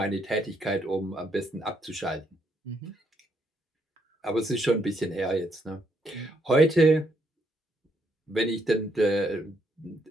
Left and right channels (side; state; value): both; normal; correlation 0.75